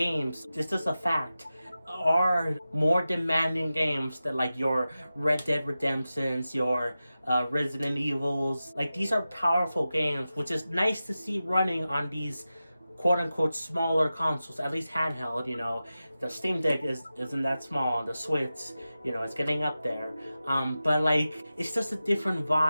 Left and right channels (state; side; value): inverted; both; correlation -0.94